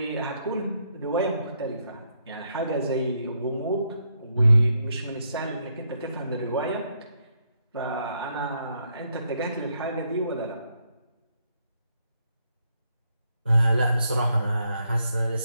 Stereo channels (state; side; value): inverted; both; correlation -0.76